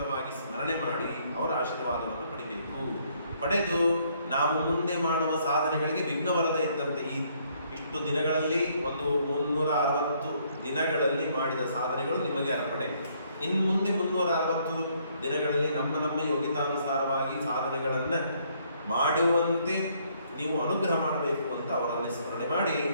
ಸ್ಮರಣೆ ಮಾಡಿ ಅವರ ಆಶೀರ್ವಾದವನ್ನು ಪಡಿಬೇಕು. ಪಡೆದು ನಾವು ಮುಂದೆ ಮಾಡುವ ಸಾಧನೆಗಳಿಗೆ ವಿಘ್ನ ಬರದೇ ಇದ್ದಂತೆ ಇಷ್ಟು ದಿನಗಳಲ್ಲಿ, ಒಂದು 360 ದಿನಗಳಲ್ಲಿ ಮಾಡಿದ ಸಾಧನೆಗಳು ನಿಮಗೆ ಅರ್ಪಣೆ. ಇನ್ನು ಮುಂದೆ 360 ದಿನಗಳಲ್ಲಿ ನಮ್ಮ ಯೋಗ್ಯತಾನುಸಾರವಾಗಿ ಸಾಧನೆಗಳನ್ನು ಮಾಡುವಂತೆ ನೀವು ಅನುಗ್ರಹ ಮಾಡಬೇಕು ಅಂತ ಅವರಲ್ಲಿ ಸ್ಮರಣೆ ಮಾಡಿ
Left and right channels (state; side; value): inverted; both; correlation -0.67